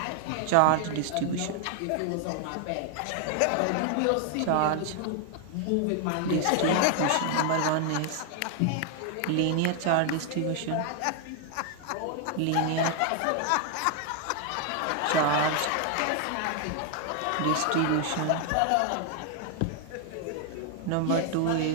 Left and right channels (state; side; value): different; both; correlation 0.00